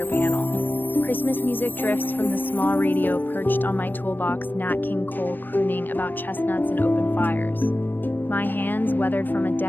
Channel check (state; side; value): late; right; 0.092 ms